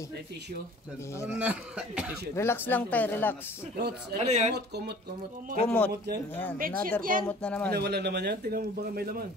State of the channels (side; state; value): both; normal; correlation 0.48